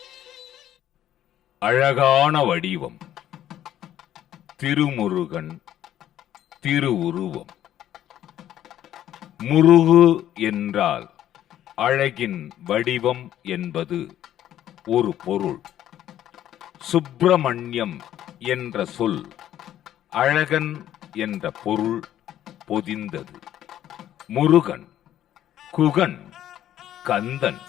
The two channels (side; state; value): right; quieter; 11.8 dB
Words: அழகான வடிவம் திருமுருகன் திருவுருவம். முருகு என்றால் அழகின் வடிவம் என்பது ஒரு பொருள். சுப்பிரமணியம் என்ற சொல் அழகன் என்ற பொருள் பொதிந்தது. முருகன், குகன், கந்தன்,